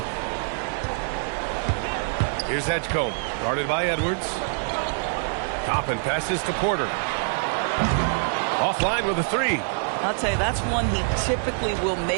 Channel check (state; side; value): silent; left; 62 dB below the other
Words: Here's Edgecombe. Guarded by Edwards. Toppin passes to Porter. Offline with a 3. I'll tell you, that's one he typically will